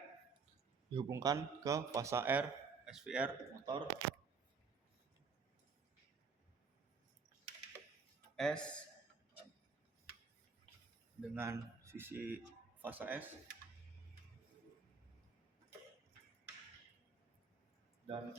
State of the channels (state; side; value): quieter; left; 5.0 dB